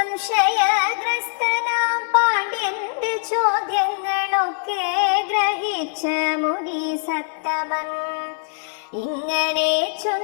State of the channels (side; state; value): right; silent; digital silence